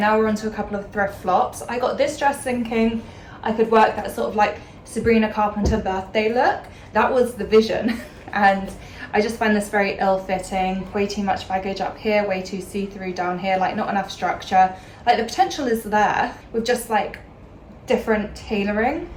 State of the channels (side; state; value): both; identical; correlation 1.00